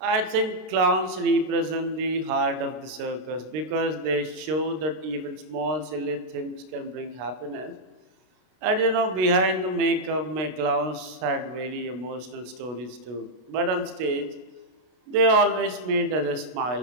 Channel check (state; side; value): late; left; 32 ms